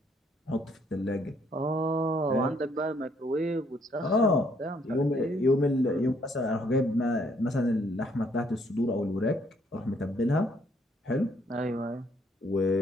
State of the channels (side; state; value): both; normal; correlation 0.68